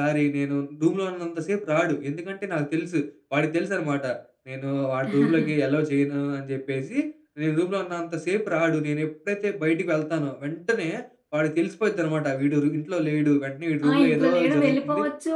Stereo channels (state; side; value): identical; both; correlation 1.00